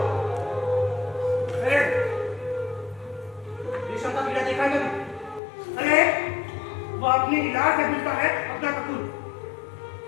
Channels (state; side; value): drops out; right; at 5.4 s